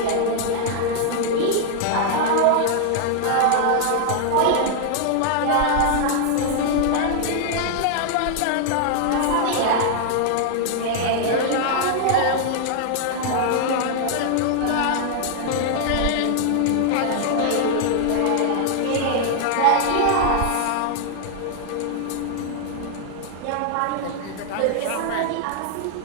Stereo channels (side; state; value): both; different; correlation -0.01